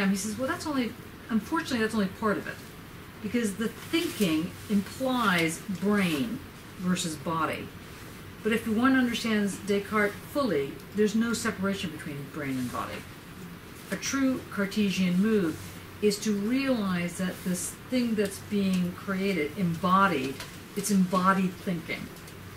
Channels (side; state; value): both; identical; correlation 1.00